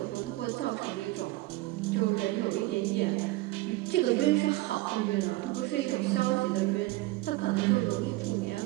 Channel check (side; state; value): left; quieter; 19.3 dB